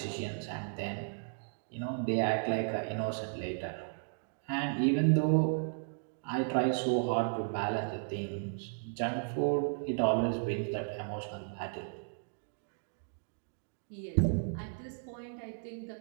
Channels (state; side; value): silent; left; digital silence